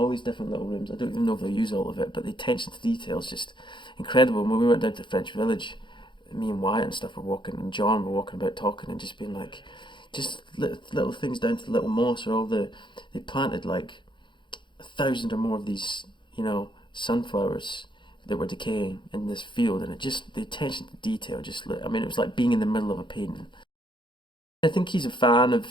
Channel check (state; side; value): late; right; 0.23 ms